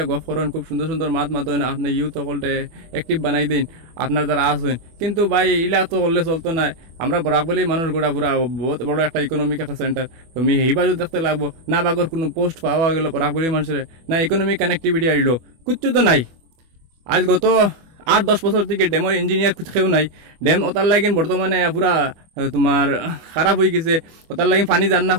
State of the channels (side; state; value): left; late; 24 ms